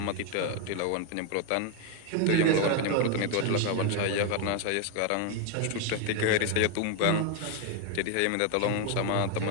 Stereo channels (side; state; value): both; different; correlation 0.01